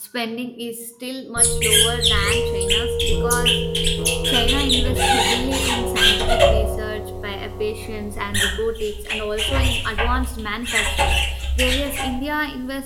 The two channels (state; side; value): identical; both; correlation 1.00